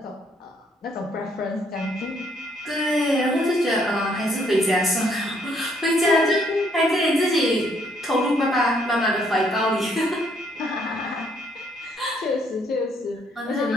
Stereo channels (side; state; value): both; normal; correlation 0.68